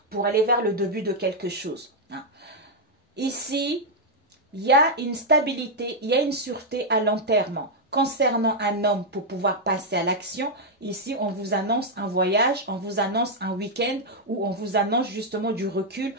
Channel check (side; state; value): both; normal; correlation -0.02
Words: pour aller vers le début de quelque chose. Ici, il y a une stabilité, il y a une sûreté à long terme. Concernant un homme pour pouvoir passer à l'action, ici on vous annonce un voyage, on vous annonce un week-end ou on vous annonce justement du recul